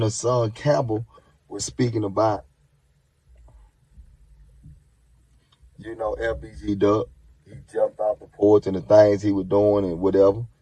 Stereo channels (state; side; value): identical; both; correlation 1.00